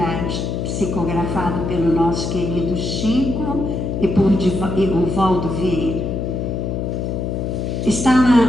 psicografado pelo nosso querido Chico e por Divaldo Vieira. Está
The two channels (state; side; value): noise; left; hum, 2 dB below the sound